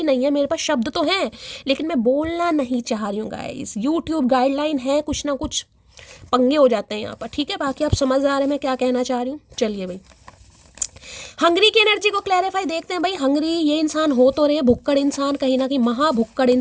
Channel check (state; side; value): identical; both; correlation 1.00